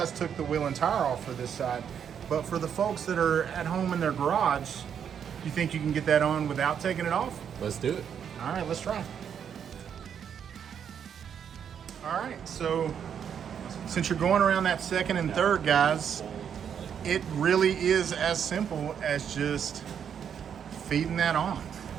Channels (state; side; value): quieter; left; 8.1 dB